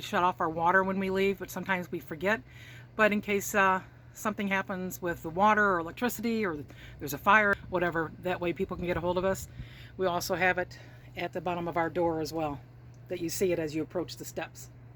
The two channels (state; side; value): identical; both; correlation 1.00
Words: off our water when we leave, but sometimes we forget. But in case something happens with the water or electricity, or there's a fire, whatever, that way people can get a hold of us. We also have it at the bottom of our door as well, that you see it as you approach the steps.